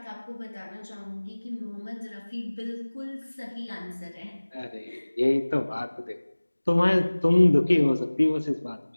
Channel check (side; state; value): both; inverted; correlation -1.00